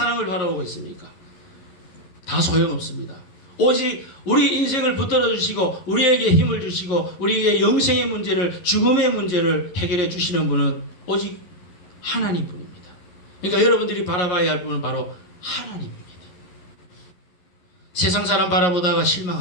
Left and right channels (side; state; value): right; late; 11 ms